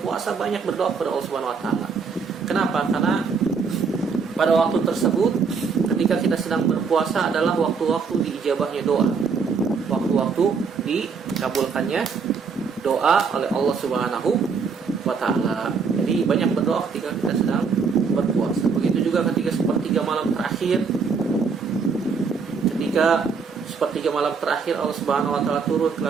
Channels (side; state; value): left; quieter; 5.4 dB